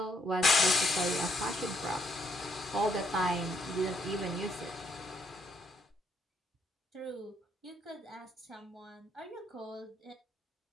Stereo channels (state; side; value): normal; both; correlation 0.72